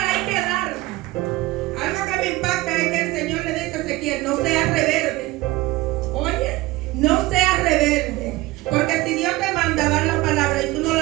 hay que darla. Algo que me impacta es que el Señor le dice a Ezequiel, no seas rebelde. Oye, no seas rebelde. Porque si Dios te manda a dar la palabra y tú no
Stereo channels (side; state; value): left; quieter; 19.4 dB